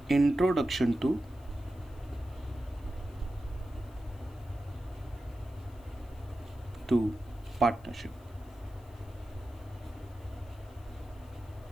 introduction to partnership.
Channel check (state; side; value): noise; left; hiss, 28 dB below the sound